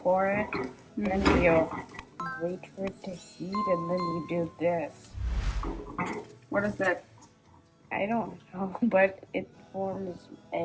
pour it, then you wait for it to heat, and then you do this. What is that? I don't know, but it forms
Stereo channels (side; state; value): both; identical; correlation 1.00